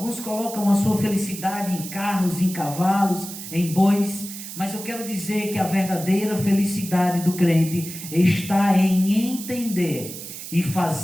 colocam a sua felicidade em carros, em cavalos, em bois. Mas eu quero dizer que a verdadeira felicidade do crente está em entender e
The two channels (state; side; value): noise; right; hiss, 11 dB below the sound